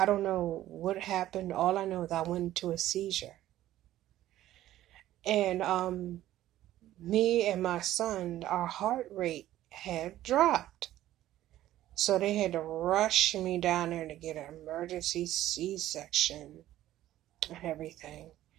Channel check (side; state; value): left; quieter; 13.8 dB